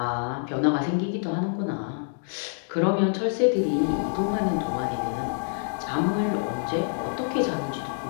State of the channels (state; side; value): silent; right; digital silence